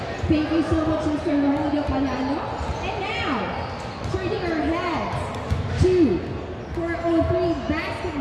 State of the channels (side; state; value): both; identical; correlation 1.00